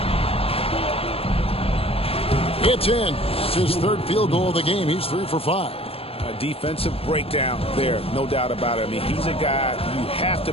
It's in. It's his third field goal of the game. He's 3 for 5. A defensive breakdown there, no doubt about it. I mean, he's a guy you have to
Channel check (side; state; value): right; late; 0.28 ms